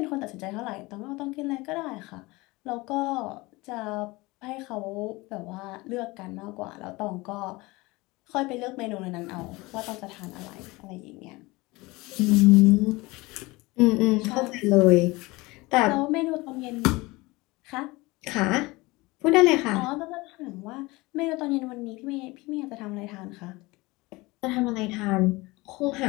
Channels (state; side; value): quieter; right; 22.4 dB